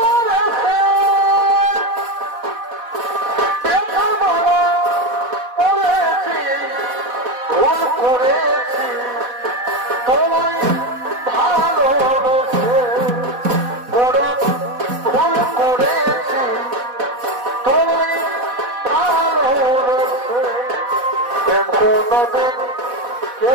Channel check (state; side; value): late; left; 4.1 ms